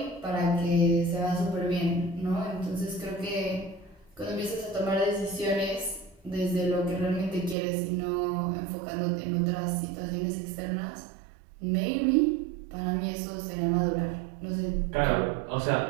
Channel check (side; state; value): left; drops out; at 7.6 s